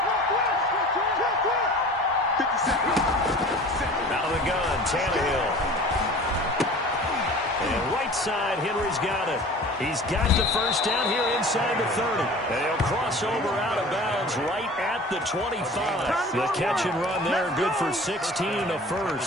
Out of the gun, Tannehill. And right side, Henry's got it. He's got the first down here inside the 30. And he'll cross over out of bounds right at the 25. The catch and run there, good for 16, a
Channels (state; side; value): normal; both; correlation 0.42